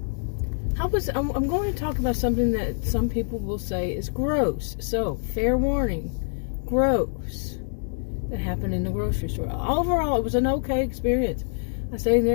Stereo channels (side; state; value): right; silent; digital silence